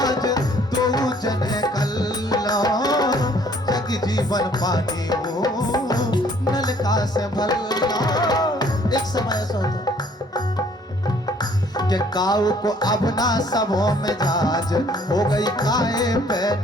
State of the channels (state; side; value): normal; both; correlation 0.60